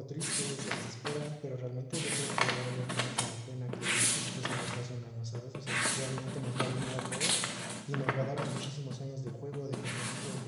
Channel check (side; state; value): both; identical; correlation 1.00